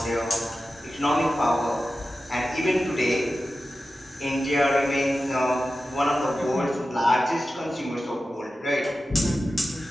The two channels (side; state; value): both; normal; correlation 0.93